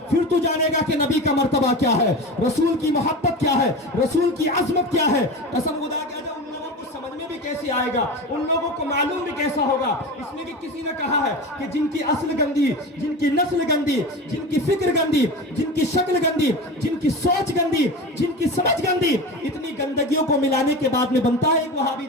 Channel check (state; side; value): normal; both; correlation 0.28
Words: फिर तू जानेगा कि नबी का मर्तबा क्या है, रसूल की मोहब्बत क्या है, रसूल की अजमत क्या है। कसम खुदा के समझ में भी कैसे आएगा, उन लोगों को मालूम भी कैसा होगा। इसलिए कि किसी ने कहा है कि जिनकी असल गंदी, जिनकी नस्ल गंदी, जिनकी फिक्र गंदी, जिनकी शक्ल गंदी, जिनकी सोच गंदी, जिनकी समझ गंदी, इतनी गंदगियों को मिलाने के बाद में बनता है एक वहाबी